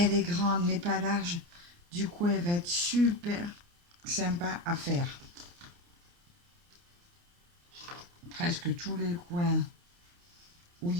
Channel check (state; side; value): late; left; 29 ms